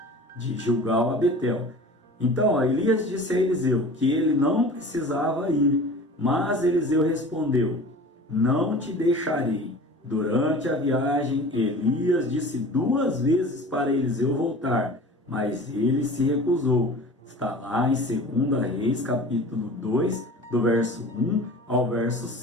de Gilgal a Betel. Então, Elias disse a Eliseu que ele não precisava ir, mas Eliseu respondeu: não te deixarei. Durante a viagem, Elias disse 2 vezes para Eliseu voltar, mas ele se recusou. Está lá em 2 Reis, capítulo 2, do verso 1 ao verso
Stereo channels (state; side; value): normal; both; correlation 0.40